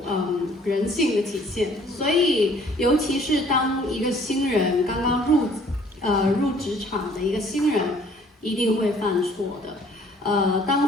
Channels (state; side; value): normal; both; correlation 0.57